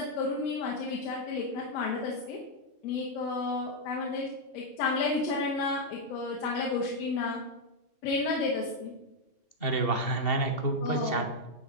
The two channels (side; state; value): right; late; 2.7 ms